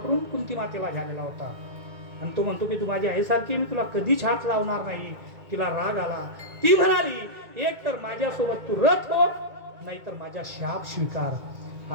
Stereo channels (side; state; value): left; late; 2.2 ms